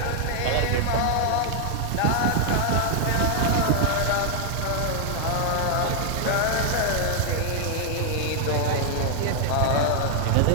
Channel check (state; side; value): different; both; correlation 0.00